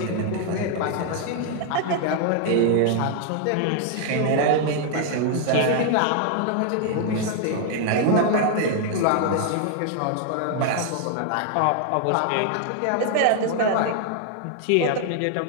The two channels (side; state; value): both; different; correlation 0.00